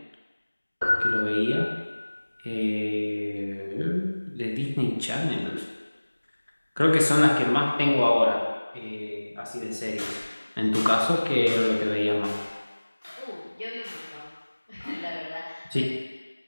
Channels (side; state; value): both; inverted; correlation -1.00